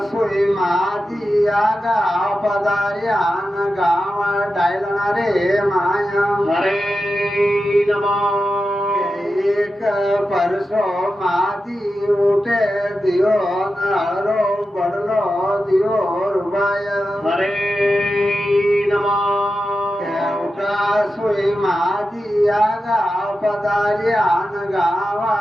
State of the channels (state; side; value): normal; both; correlation 0.91